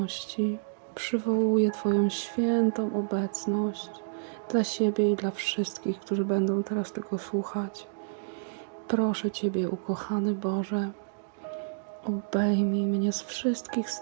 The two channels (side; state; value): left; silent; digital silence